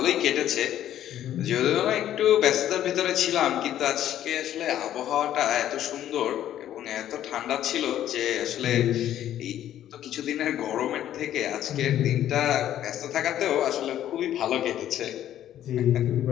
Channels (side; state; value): right; quieter; 11.6 dB